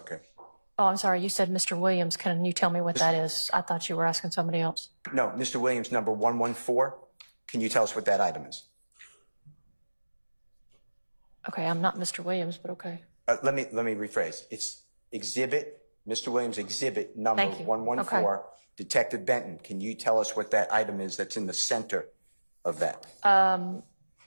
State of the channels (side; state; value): both; inverted; correlation -1.00